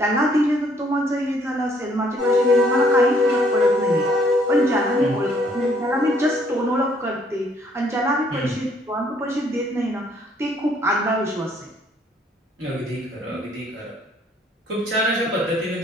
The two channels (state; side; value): normal; both; correlation 0.65